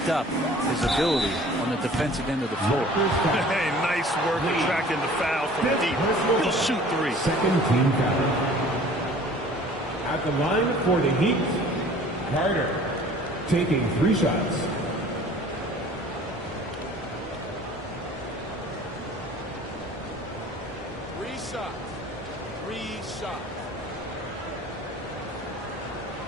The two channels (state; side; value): normal; both; correlation 0.48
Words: up his ability on the defensive end of the floor. Hey, nice work attracting the foul from deep. He'll shoot three. Second team foul. At the line for the Heat, Carter taking 3 shots. Three shots.